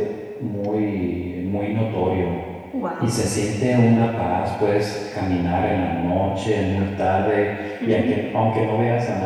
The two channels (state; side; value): identical; both; correlation 1.00